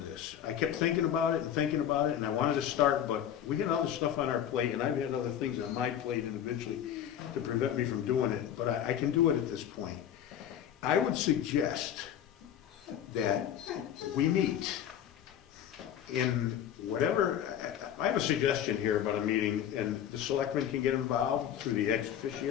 I kept thinking about it, and I wanted to start, but we had other stuff on our plate, and I've had other things on my plate individually to prevent me from doing it, but I can do it at this point. I would suggest that we meet in whatever, I have a suggestion here about a meeting, and the selectmen can get involved through the ex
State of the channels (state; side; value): quieter; right; 9.9 dB